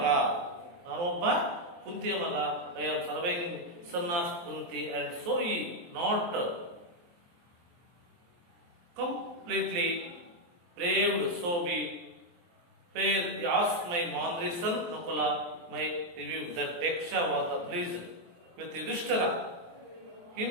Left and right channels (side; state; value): left; late; 23 ms